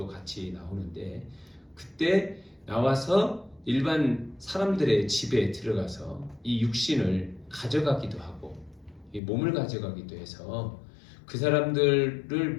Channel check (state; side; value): drops out; right; at 9.2 s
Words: 같이 나오는데 그때 나와서 일반 사람들의 집에 들어가서 이 육신을 가져가기도 하고 이 몸을 가져가기도 해서 그 사람들을